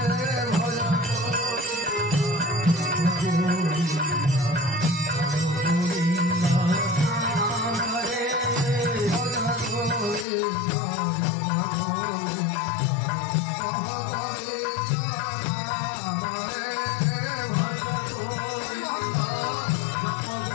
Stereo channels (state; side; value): drops out; right; at 10.2 s